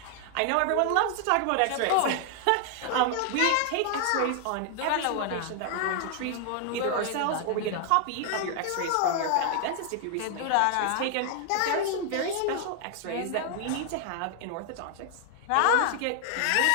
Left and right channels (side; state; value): both; different; correlation 0.00